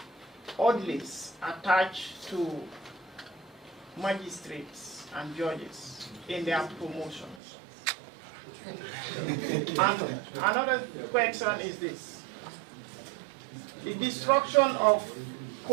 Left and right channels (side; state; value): left; drops out; at 7.4 s